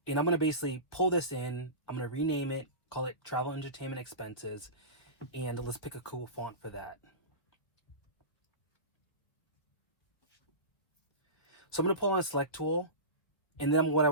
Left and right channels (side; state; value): right; late; 1.8 ms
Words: I'm going to basically pull this in. I'm going to rename it, call it travel entertainment expenses, and let's pick a cool font for that. So I'm going to pull on a select tool, and then what I